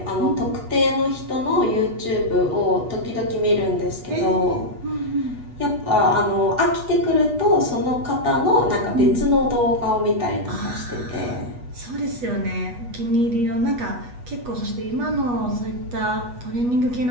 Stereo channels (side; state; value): left; late; 8.2 ms